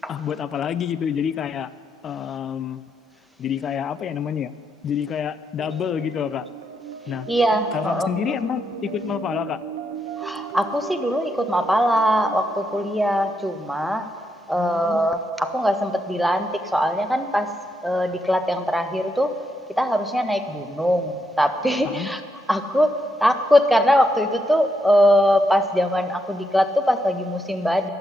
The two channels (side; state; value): both; normal; correlation 0.80